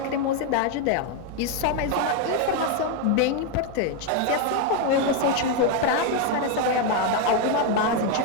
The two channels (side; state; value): both; different; correlation 0.01